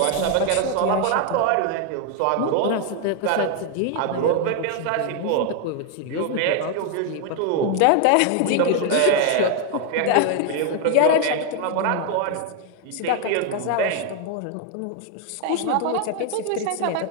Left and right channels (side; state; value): both; different; correlation 0.01